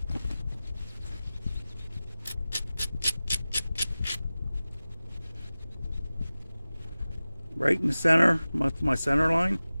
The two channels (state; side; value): inverted; both; correlation -0.96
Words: Right in the center, my center line.